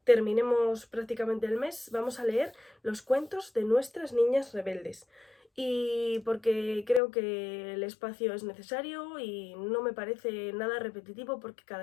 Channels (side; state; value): right; drops out; at 7.0 s